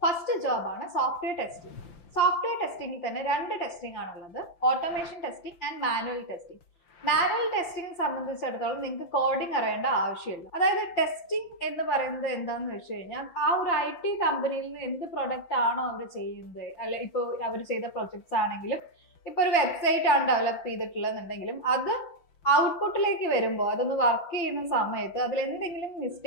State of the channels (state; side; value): late; right; 5.8 ms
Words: First ജോബാണ് സോഫ്റ്റ്വെയർ ടെസ്റ്റിംഗ്. സോഫ്റ്റ്വെയർ ടെസ്റ്റിംഗിൽ തന്നെ രണ്ട് ടെസ്റ്റിംഗ് ആണുള്ളത്, automation testing and manual testing. Manual testing സംബന്ധിച്ചിടത്തോളം നിങ്ങൾക്ക് കോഡിംഗ് അറിയേണ്ട ആവശ്യമില്ല. അതായത് ടെസ്റ്റിംഗ് എന്ന് പറയുന്നത് എന്താന്ന് വെച്ച് കഴിഞ്ഞാൽ ആ ഒരു IT കമ്പനിയിൽ നിന്ന് എന്ത് പ്രൊഡക്റ്റ് ആണോ അവർ ചെയ്യുന്നത്, അല്ലെ ഇപ്പോൾ അവർ ചെയ്ത പ്രൊജക്ട്സ് ആണെങ്കിലും ഇപ്പോൾ ഒരു വെബ്സൈറ്റ് ആണ് ഡെവലപ്പ് ചെയ്തിട്ടുള്ളതെന്നുണ്ടെങ്കിലും അത് ഔട്ട്പുട്ടിലേക്ക് വരുമ്പോൾ അതൊന്ന് വർക്ക് ചെയ്യുന്ന സമയത്ത് അതിൽ എന്തെങ്കിലും